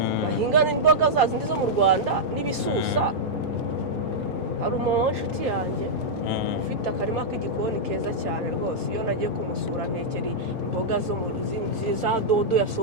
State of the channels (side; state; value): both; normal; correlation -0.08